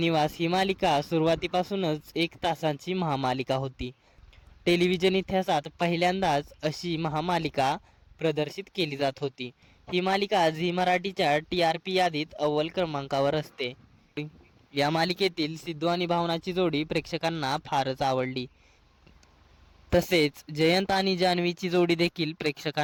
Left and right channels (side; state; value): both; identical; correlation 1.00